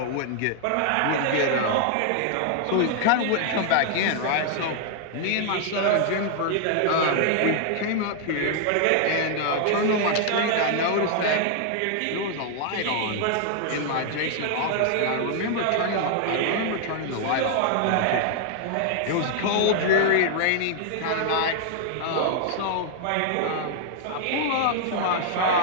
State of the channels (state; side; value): different; both; correlation 0.00